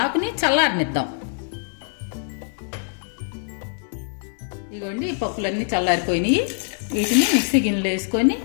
ఆకుని చల్లారనిద్దాం. ఇదిగోండి ఈ పప్పులన్నీ చల్లారిపోయినాయి. వీటిని మిక్సీ గిన్నెలో వేసుకొని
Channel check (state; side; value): silent; right; 63 dB below the other